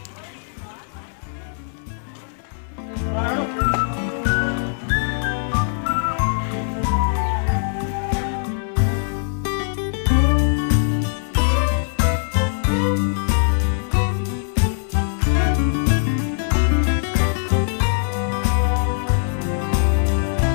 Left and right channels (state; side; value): silent; right; 65 dB below the other